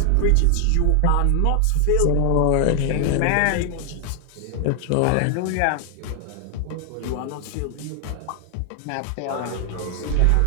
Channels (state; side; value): different; both; correlation 0.00